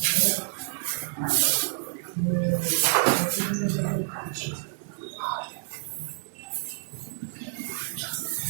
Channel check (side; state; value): left; silent; digital silence